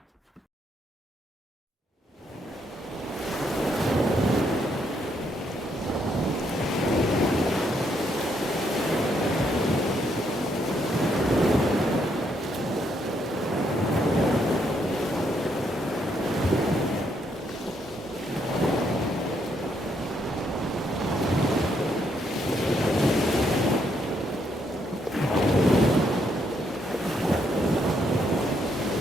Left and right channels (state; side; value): normal; both; correlation 0.74